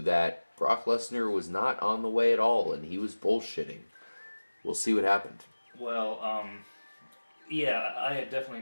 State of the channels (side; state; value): both; inverted; correlation -1.00